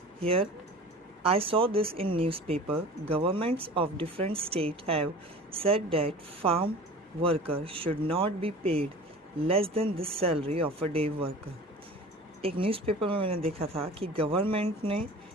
Here I saw this in newspaper. Governments of different states have said that farm workers should not be paid less than the salary of a day worker. एक newspaper में मैंने देखा था कि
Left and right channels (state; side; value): normal; both; correlation 0.39